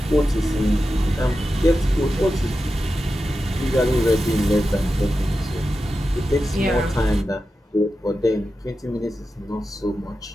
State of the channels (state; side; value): normal; both; correlation 0.91